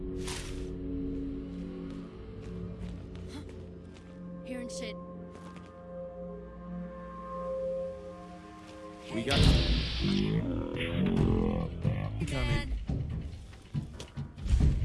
Hearing shit. We got coming.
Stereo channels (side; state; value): both; identical; correlation 1.00